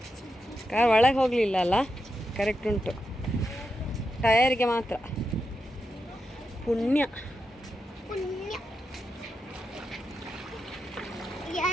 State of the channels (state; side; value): normal; both; correlation 0.87